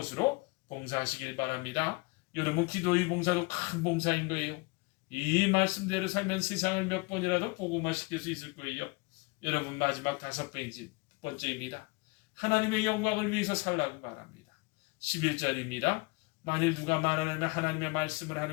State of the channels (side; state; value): right; quieter; 27.0 dB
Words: 봉사하시길 바랍니다. 여러분, 기도의 봉사도 큰 봉사인 거예요. 이 말씀대로 살면 세상을 몇 번이라도 복음화시킬 수 있을 거예요. 여러분, 마지막 5번째입니다. 하나님의 영광을 위해서 살라고 말합니다. 11절입니다. 만일 누가 말하려면 하나님의 말씀을